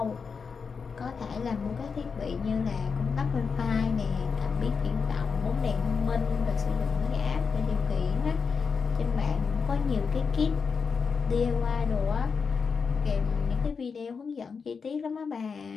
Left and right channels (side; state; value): right; quieter; 5.6 dB